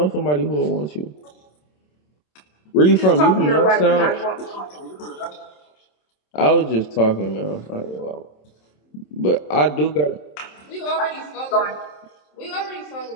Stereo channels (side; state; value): right; late; 27 ms